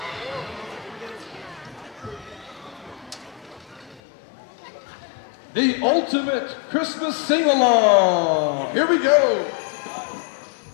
The ultimate Christmas sing-along! Here we go!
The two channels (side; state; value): right; drops out; at 4.0 s